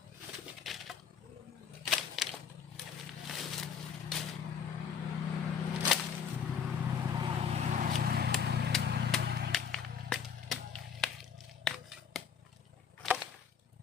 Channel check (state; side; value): quieter; right; 7.1 dB